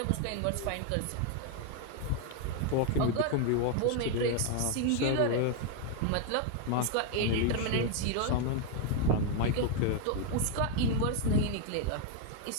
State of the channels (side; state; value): both; different; correlation 0.01